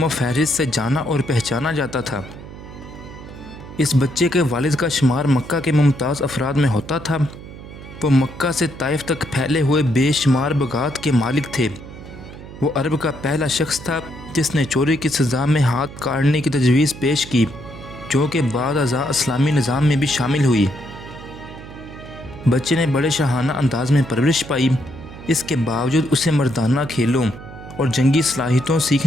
फहरिस्त से जाना और पहचाना जाता था। इस बच्चे के वालिद का शुमार मक्का के मुमताज़ अफराद में होता था। वो मक्का से ताइफ तक फैले हुए बेशुमार बगात के मालिक थे। वो अरब का पहला शख्स था जिसने चोरी की सज़ा में हाथ काटने की तजवीज़ पेश की, जो कि बाद अज़ा इस्लामी निज़ाम में भी शामिल हुई। बच्चे ने बड़े शाहाना अंदाज में परवरिश पाई। इसके बावजूद उसे मर्दाना खेलों और जंगी सलाहियतों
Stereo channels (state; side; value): noise; right; hum, 15 dB below the sound